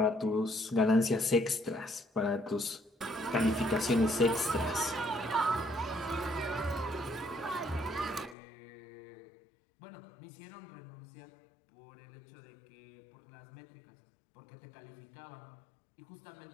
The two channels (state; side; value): drops out; right; at 8.3 s